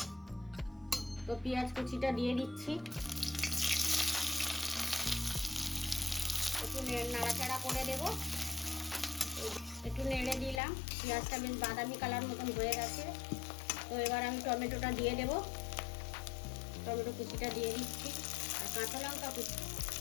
তো পেঁয়াজ কুচিটা দিয়ে দিচ্ছি। একটু নাড়াচাড়া করে দেব। একটু নেড়ে দিলাম, পেঁয়াজটা বেশ বাদামি কালার মতন হয়ে গেছে। তো এবার আমি টমেটোটা দিয়ে দেব। টমেটো কুচিটা দিয়ে দিচ্ছি আর কাঁচা লঙ্কা কুচি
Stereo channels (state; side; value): drops out; right; at 10.6 s